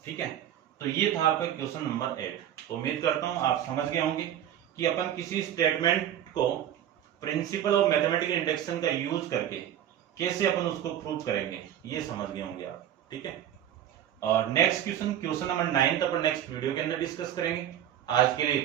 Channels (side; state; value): left; quieter; 10.8 dB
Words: ठीक है। तो ये था आपका क्वेश्चन नंबर 8। तो उम्मीद करता हूं आप समझ गए होंगे कि अपन किसी स्टेटमेंट को प्रिंसिपल ऑफ मैथमेटिकल इंडक्शन का यूज करके कैसे अपन उसको प्रूव करेंगे, ये समझ गए होंगे आप, ठीक है। और नेक्स्ट क्वेश्चन नंबर 9 अपन नेक्स्ट वीडियो के अंदर डिस्कस करेंगे। आज के लिए